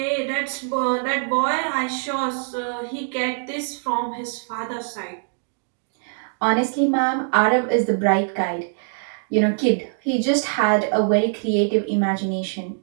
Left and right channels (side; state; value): left; silent; 63 dB below the other